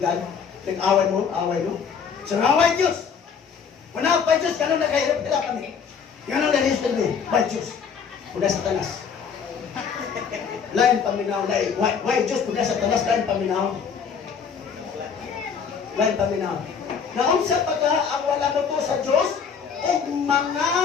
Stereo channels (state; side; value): quieter; right; 6.5 dB